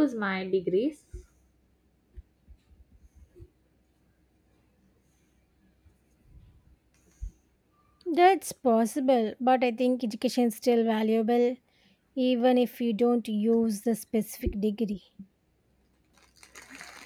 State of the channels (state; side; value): identical; both; correlation 1.00